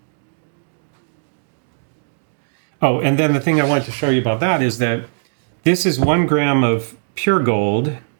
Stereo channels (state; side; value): silent; left; digital silence